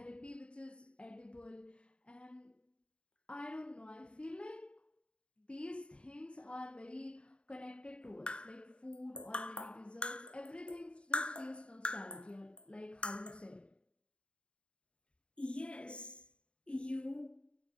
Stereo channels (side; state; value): right; late; 0.056 ms